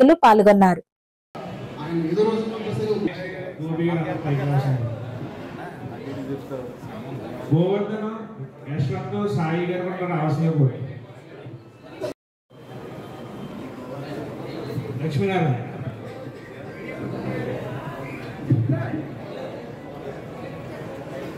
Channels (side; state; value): both; identical; correlation 1.00